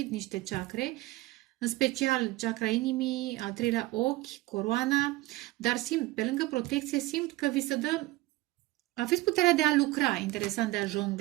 niște chakre, în special chakra inimii, al treilea ochi, coroana, dar simt, pe lângă protecție, simt că vi se dă, aveți puterea de a lucra, interesant, de a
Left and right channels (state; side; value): quieter; left; 19.1 dB